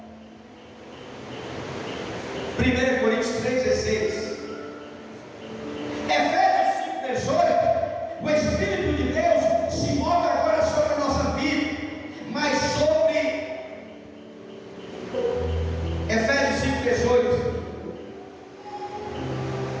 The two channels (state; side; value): identical; both; correlation 1.00